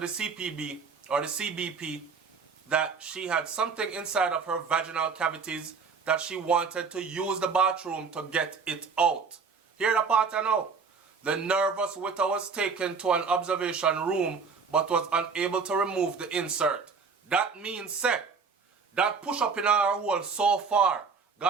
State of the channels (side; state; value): left; quieter; 5.3 dB